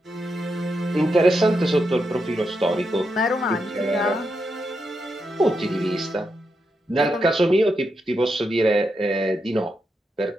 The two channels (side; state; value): both; normal; correlation 0.84